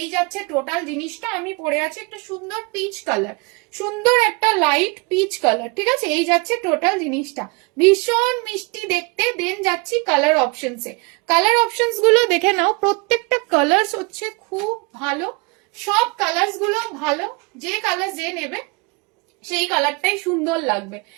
এই যাচ্ছে টোটাল জিনিসটা। আমি পরে আছি একটা সুন্দর পিচ কালার, সুন্দর একটা লাইট পিচ কালার, ঠিক আছে। এই যাচ্ছে টোটাল জিনিসটা, ভীষণ মিষ্টি দেখতে। দেন যাচ্ছি কালার অপশনসে। কালার অপশনস গুলো দেখে নাও, প্রত্যেকটা কালার্স হচ্ছে খুব ভালো, সব কালার্স গুলো ভালো। যে কালার যে নেবে সেই কালারটাই সুন্দর লাগবে।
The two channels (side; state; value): left; quieter; 29.1 dB